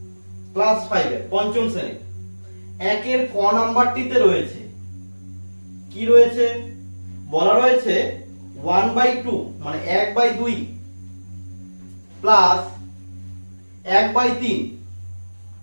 ক্লাস 5 এর পঞ্চম শ্রেণী একের ক নাম্বারটিতে রয়েছে কি রয়েছে, বলা রয়েছে 1/2 মানে 1/2 প্লাস 1/3।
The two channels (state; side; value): inverted; both; correlation -1.00